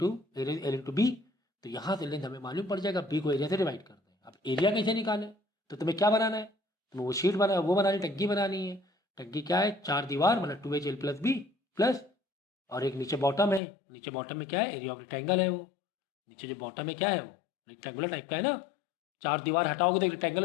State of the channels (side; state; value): right; drops out; at 13.6 s